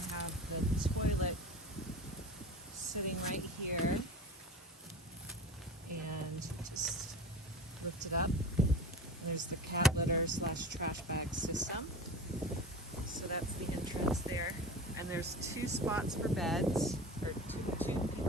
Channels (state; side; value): normal; both; correlation 0.33